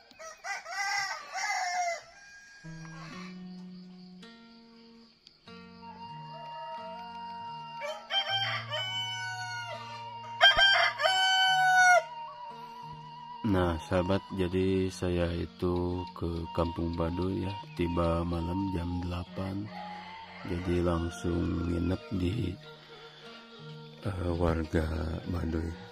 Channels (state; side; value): identical; both; correlation 1.00